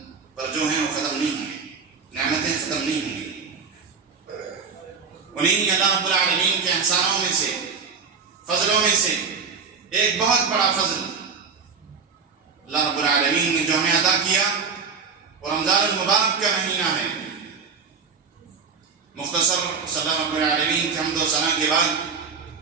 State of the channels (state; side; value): quieter; left; 5.4 dB